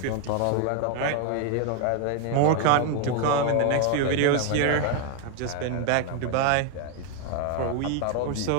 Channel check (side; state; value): both; different; correlation 0.01